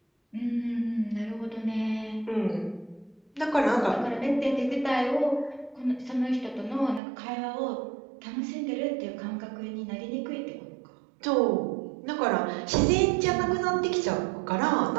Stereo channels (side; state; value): left; drops out; at 7.0 s